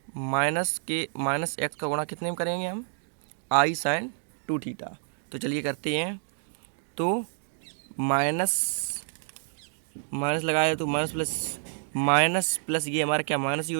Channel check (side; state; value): left; silent; 59 dB below the other